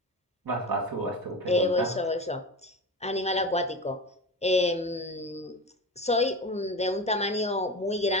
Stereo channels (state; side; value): normal; both; correlation 0.26